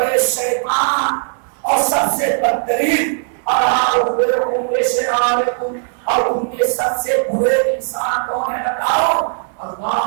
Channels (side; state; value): left; silent; 65 dB below the other